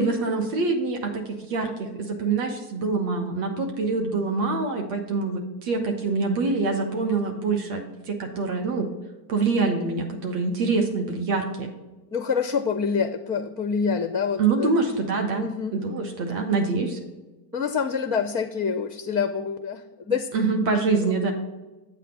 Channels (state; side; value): late; left; 4.4 ms